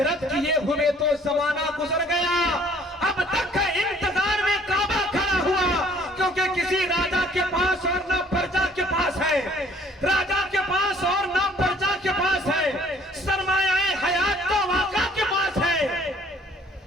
किए हुए तो जमाना गुजर गया, अब तक इंतजार में काबा खड़ा हुआ। क्योंकि किसी राजा के पास और ना प्रजा के पास है, राजा के पास और ना प्रजा के पास है, सरमाया हयात तो वाका के पास है।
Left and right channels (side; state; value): both; normal; correlation 0.57